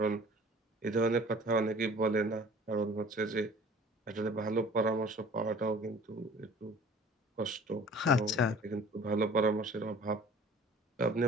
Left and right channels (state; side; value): normal; both; correlation 0.48